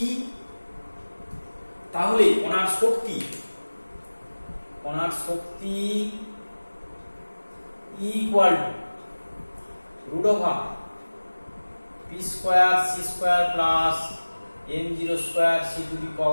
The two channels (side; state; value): both; inverted; correlation -1.00